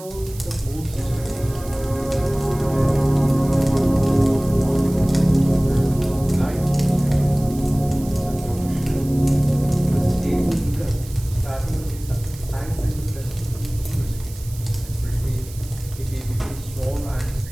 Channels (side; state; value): right; noise; hiss, 18 dB below the sound